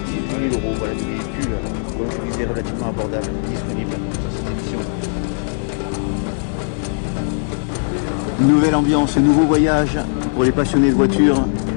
000 €. Voilà des véhicules, comme je disais, relativement abordables, disponibles sur cette édition. Une nouvelle ambiance, un nouveau voyage pour les passionnés de voitures.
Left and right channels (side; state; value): right; silent; digital silence